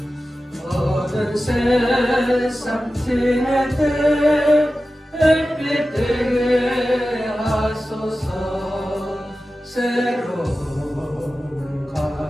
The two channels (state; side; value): normal; both; correlation 0.94